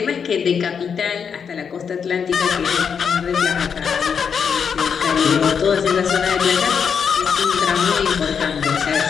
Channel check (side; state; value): right; quieter; 6.7 dB